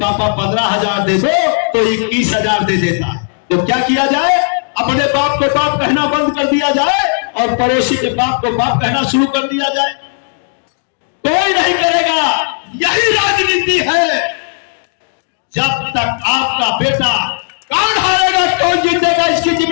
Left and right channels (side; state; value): right; silent; digital silence